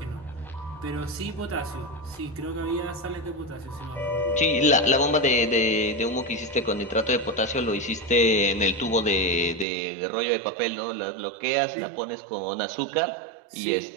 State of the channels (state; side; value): drops out; left; at 9.7 s